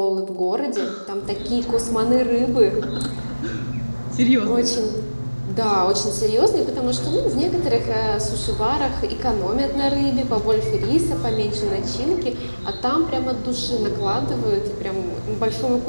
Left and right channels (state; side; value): inverted; both; correlation -1.00